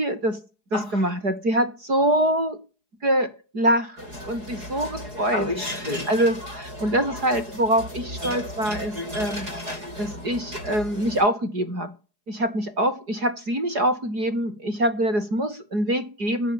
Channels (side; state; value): left; late; 4.8 ms